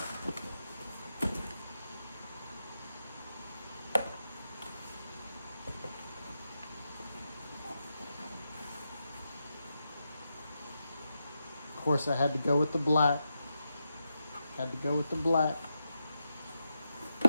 Of course, I had to go with the black. Had to go with the black.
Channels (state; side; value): inverted; both; correlation -0.87